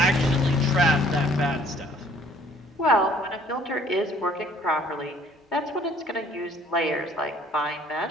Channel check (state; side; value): normal; both; correlation 0.58